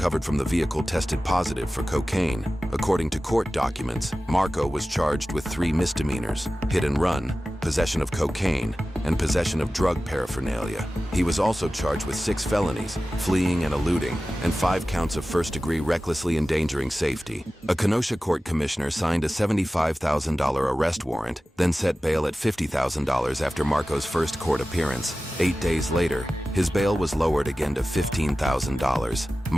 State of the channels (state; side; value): normal; both; correlation 0.96